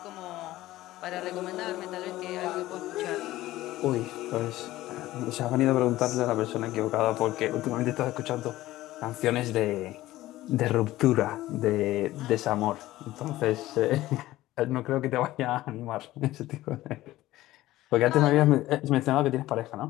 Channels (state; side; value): quieter; right; 16.2 dB